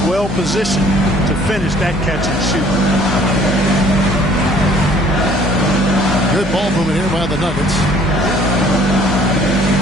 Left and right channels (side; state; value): both; normal; correlation 0.56